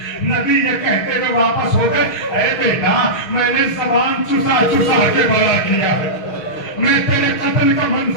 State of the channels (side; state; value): right; late; 6.3 ms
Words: نبی یہ کہتے ہوئے واپس ہو گئے, اے بیٹا میں نے زبان چسا چسا کے بڑا کیا ہے, میں تیرے قتل کا